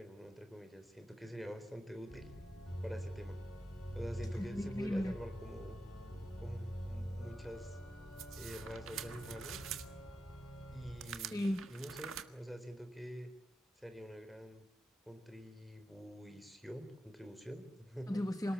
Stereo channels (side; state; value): both; normal; correlation 0.90